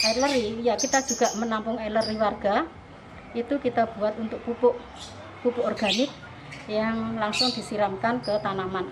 air leri, ya kita juga menampung air leri warga, itu kita buat untuk pupuk organik yang langsung disiramkan ke tanaman,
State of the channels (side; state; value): both; identical; correlation 1.00